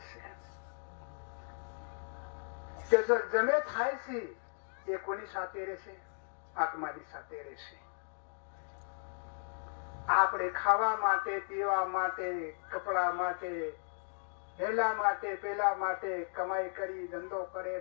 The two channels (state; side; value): silent; right; digital silence